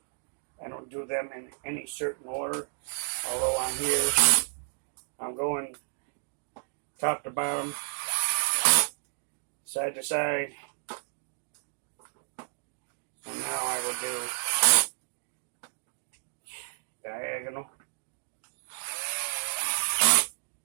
do them in any certain order. Although on here, I'm going top to bottom, side to side. And now I will do diagonal.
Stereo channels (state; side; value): silent; left; 57 dB below the other